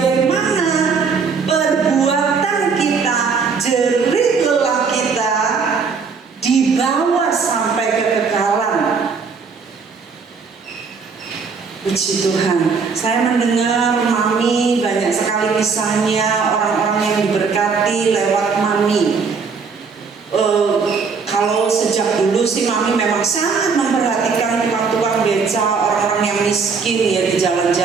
perbuatan kita, jerih lelah kita dibawa sampai kekekalan. Puji Tuhan. Saya mendengar Mami banyak sekali kisahnya orang-orang yang diberkati lewat Mami. Kalau sejak dulu sih Mami memang sangat memperhatikan tukang-tukang beca, orang-orang yang miskin ya di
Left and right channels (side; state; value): left; quieter; 5.3 dB